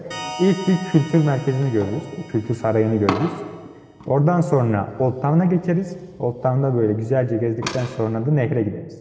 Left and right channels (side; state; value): both; identical; correlation 1.00